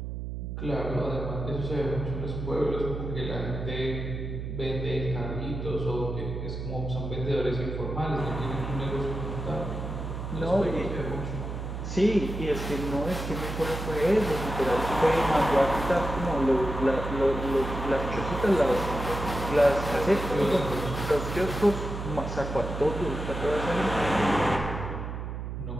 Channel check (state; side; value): noise; right; hum, 6 dB below the sound